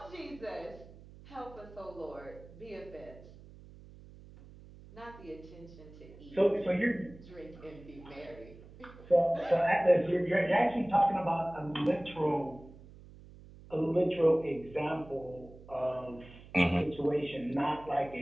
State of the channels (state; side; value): noise; right; hum, 19 dB below the sound